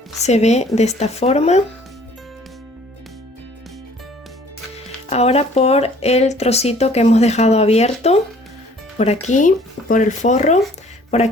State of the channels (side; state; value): both; normal; correlation 0.55